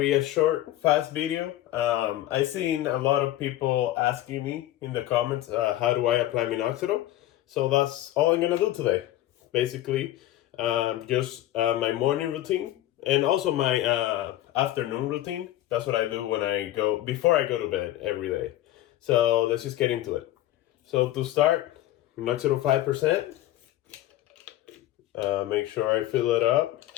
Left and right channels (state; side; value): quieter; right; 14.3 dB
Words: a short, fast video. I've seen a lot of people asking me in the comments, how do I apply Minoxidil? So that's all I'm gonna do today. Basically, just my morning routine and also my afternoon routine. That's what I do before I go to bed every day. So let's just get into it. So to start, Minoxidil 5%. Make sure I fill it up